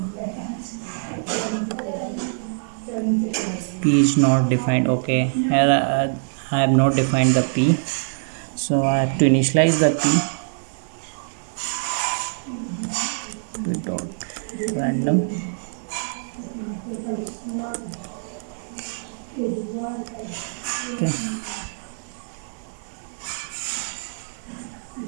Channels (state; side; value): silent; left; 59 dB below the other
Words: p is not defined. Okay, here I have not defined the p, so I have to initialize the p dot random. Okay,